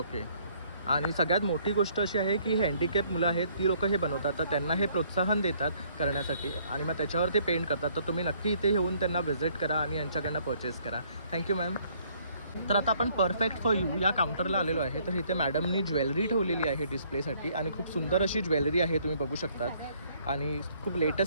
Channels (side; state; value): both; inverted; correlation -0.64